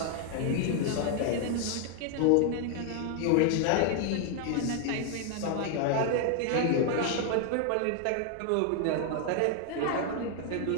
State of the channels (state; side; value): different; both; correlation 0.00